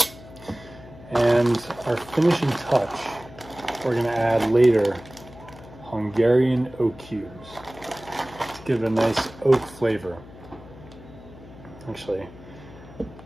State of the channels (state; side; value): noise; left; hum, 19 dB below the sound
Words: And our finishing touch, we're gonna add later Hungarian oak cubes to give it a nice oak flavor. Actually,